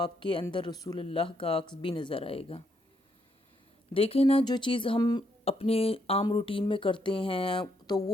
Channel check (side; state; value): both; normal; correlation 0.75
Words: کے اندر رسول اللہ کا عکس بھی نظر آئے گا۔ دیکھیں نا جو چیز ہم اپنے عام روٹین میں کرتے ہیں تو